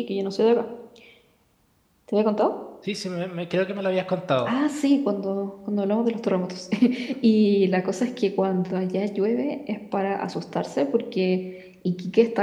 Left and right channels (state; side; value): identical; both; correlation 1.00